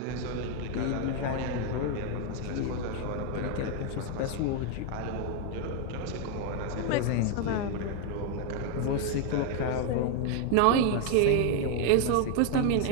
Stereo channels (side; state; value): both; different; correlation 0.01